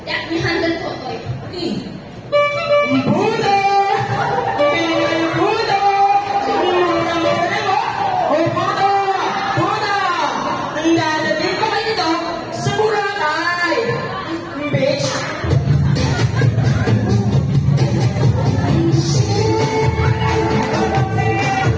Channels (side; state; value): both; identical; correlation 1.00